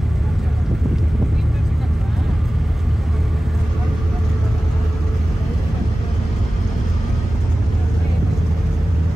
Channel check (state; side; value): normal; both; correlation 0.96